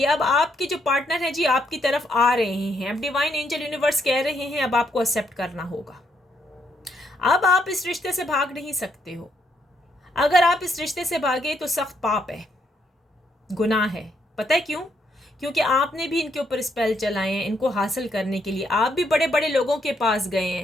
अब आपके जो पार्टनर हैं जी आपकी तरफ आ रहे हैं। अब डिवाइन एंजल यूनिवर्स कह रहे हैं अब आपको एक्सेप्ट करना होगा। अब आप इस रिश्ते से भाग नहीं सकते हो। अगर आप इस रिश्ते से भागे तो सख्त पाप है, गुनाह है। पता है क्यों? क्योंकि आपने भी इनके ऊपर स्पेल चलाए हैं इनको हासिल करने के लिए। आप भी बड़े बड़े लोगों के पास गए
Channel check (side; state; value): both; normal; correlation 0.75